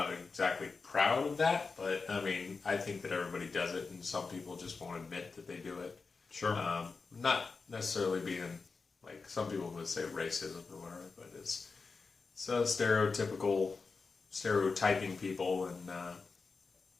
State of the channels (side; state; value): right; quieter; 4.5 dB